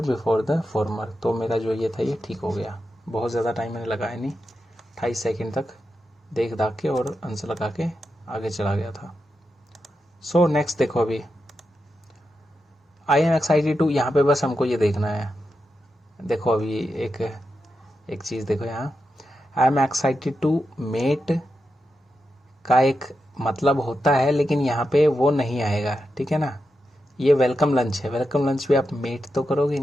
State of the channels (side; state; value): both; normal; correlation 0.88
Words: before the former. तो मेरा जो ये था ये ठीक हो गया, बहुत ज़्यादा टाइम मैंने लगाया नहीं, 28 सेकेंड तक देख दाख के और आंसर लगा के आगे चला गया था। सो नेक्स्ट देखो अभी, आई एम एक्साइटेड टू, यहाँ पे बस हमको ये देखना है। देखो अभी एक चीज़ देखो यहाँ, I am excited to met का एक मतलब होता है, लेकिन यहाँ पे वो नहीं आएगा, ठीक है ना। ये वेलकम लंच है, वेलकम लंच पे आप मेट तो करोगे